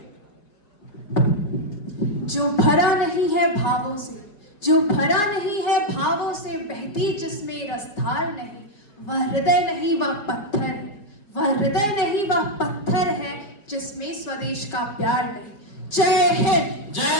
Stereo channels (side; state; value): right; late; 4.8 ms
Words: जो भरा नहीं है भावों से, जो भरा नहीं है भावों से, बहती जिसमें रसधार नहीं, वह हृदय नहीं वह पत्थर है, वह हृदय नहीं वह पत्थर है जिसमें स्वदेश का प्यार नहीं। जय हिंद।